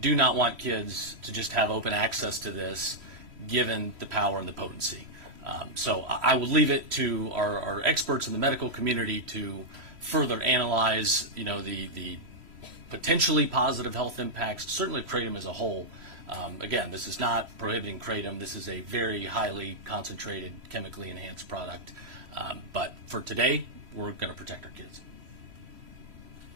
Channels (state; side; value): late; left; 3.0 ms